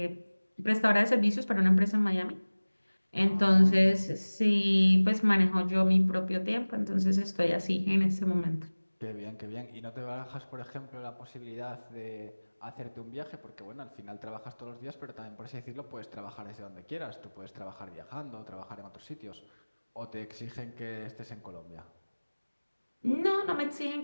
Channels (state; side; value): inverted; both; correlation -1.00